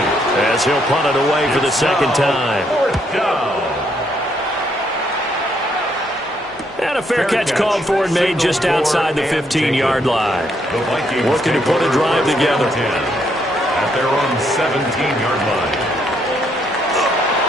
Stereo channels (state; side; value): normal; both; correlation 0.73